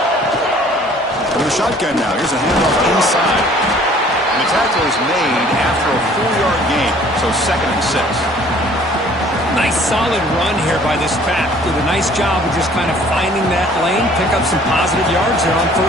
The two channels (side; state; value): both; normal; correlation 0.54